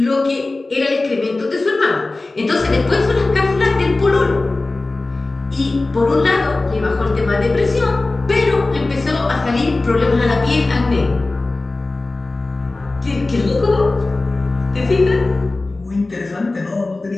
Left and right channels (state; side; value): quieter; right; 3.2 dB